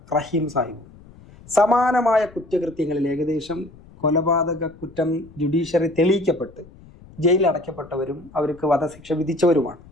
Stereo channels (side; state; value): left; noise; rumble, 22 dB below the sound